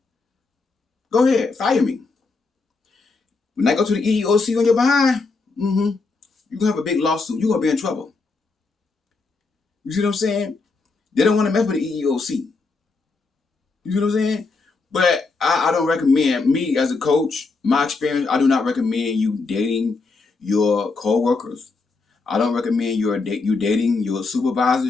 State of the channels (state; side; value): quieter; right; 4.0 dB